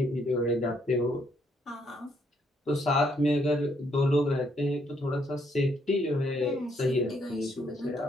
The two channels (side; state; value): both; normal; correlation 0.71